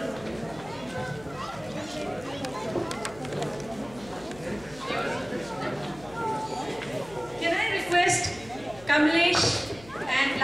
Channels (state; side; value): noise; left; hum, 19 dB below the sound